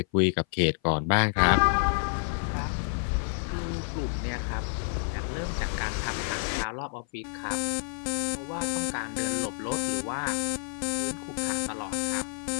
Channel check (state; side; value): silent; right; 56 dB below the other